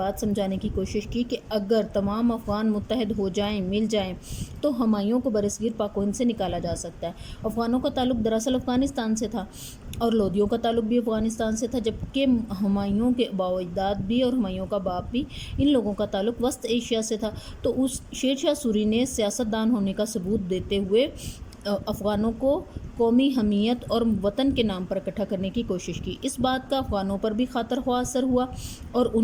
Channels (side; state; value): both; identical; correlation 1.00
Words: سمجھانے کی کوشش کی کہ اگر تمام افغان متحد ہو جائیں، مل جائیں تو ہمایوں کو برصغیر پاک و ہند سے نکالا جا سکتا ہے۔ افغانوں کا تعلق دراصل افغانستان سے تھا اور لودھیوں کا تعلق بھی افغانستان سے تھا، جبکہ ہمایوں کے آباء و اجداد بھی اور ہمایوں کا باپ بھی، ان لوگوں کا تعلق وسط ایشیا سے تھا۔ تو اس شیر شاہ سوری نے سیاستدان ہونے کا ثبوت دیتے ہوئے افغانوں کو قومی حمیت اور وطن کے نام پر اکٹھا کرنے کی کوشش کی۔ اس بات کا افغانوں پر بھی خاطر خواہ اثر ہوا اور